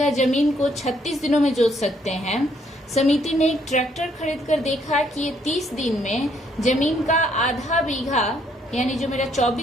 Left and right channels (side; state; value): both; normal; correlation 0.69